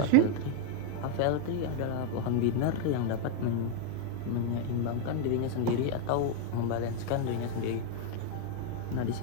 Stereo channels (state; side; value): different; both; correlation 0.00